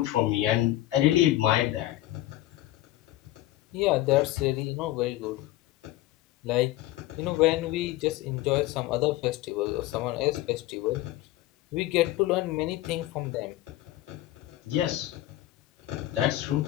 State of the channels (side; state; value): right; quieter; 15.8 dB